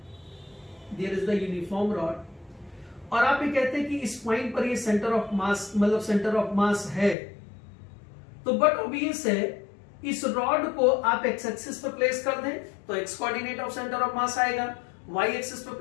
there is the uniform rod, और आप ये कहते हैं कि इस पॉइंट पर ये सेंटर ऑफ मास, मतलब सेंटर ऑफ मास है, तो बट ऑब्वियस है इस रॉड को आप एक्स एक्सिस पर प्लेस कर दें तो X coordinate of centre of mass आएगा, वाई एक्सिस पर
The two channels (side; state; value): right; drops out; at 7.2 s